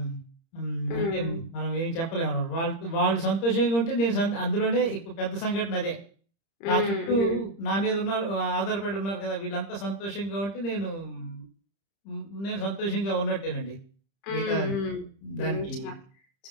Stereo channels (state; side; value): late; right; 30 ms